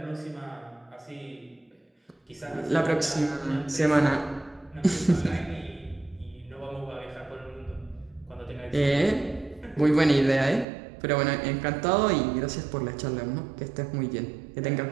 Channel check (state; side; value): drops out; left; at 10.7 s